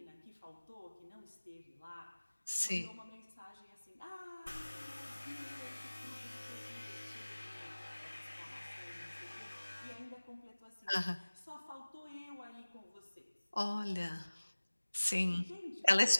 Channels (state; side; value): inverted; both; correlation -1.00